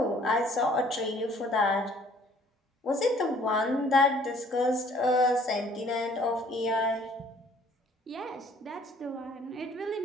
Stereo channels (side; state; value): both; normal; correlation 0.57